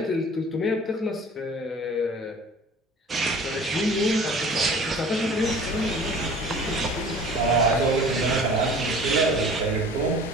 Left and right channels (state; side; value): normal; both; correlation 0.45